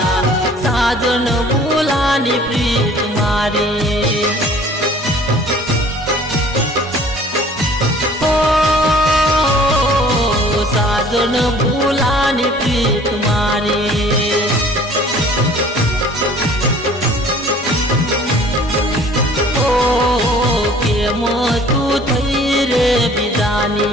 साजन बुलाने प्रीत मारी। ओ साजन बुलाने प्रीत मारी।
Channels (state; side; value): normal; both; correlation 0.51